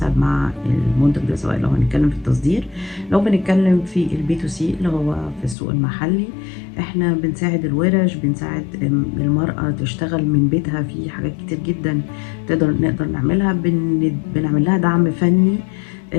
مع المنتج ده، سواء لو هنتكلم في التصدير، لو بنتكلم في البي تو سي اللي هو في السوق المحلي. احنا بنساعد الورش، بنساعد المرأة تشتغل من بيتها في حاجات كتير جدا نقدر نعملها. بنعمل لها دعم فني،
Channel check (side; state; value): right; drops out; at 5.6 s